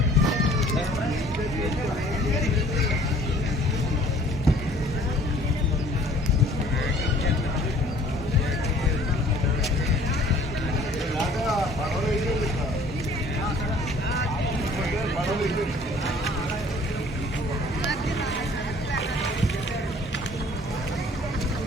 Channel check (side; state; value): both; normal; correlation 0.53